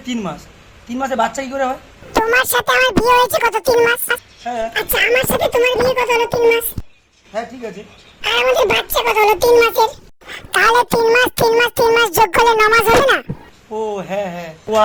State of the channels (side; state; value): both; identical; correlation 1.00